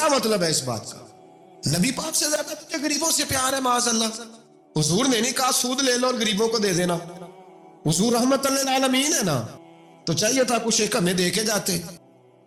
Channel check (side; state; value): both; identical; correlation 1.00